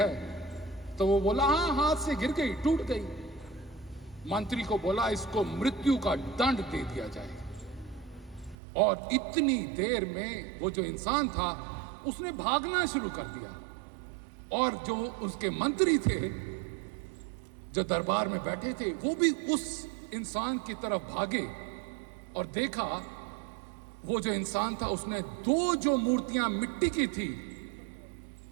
तो वो बोला हाँ, हाथ से गिर गई, टूट गई। मंत्री को बोला इसको मृत्यु का दंड दे दिया जाए। और इतनी देर में वो जो इंसान था उसने भागना शुरू कर दिया और जो उसके मंत्री थे जो दरबार में बैठे थे वो भी उस इंसान की तरफ भागे और देखा वो जो इंसान था उसने 2 जो मूर्तियां मिट्टी की थी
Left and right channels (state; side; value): drops out; left; at 8.6 s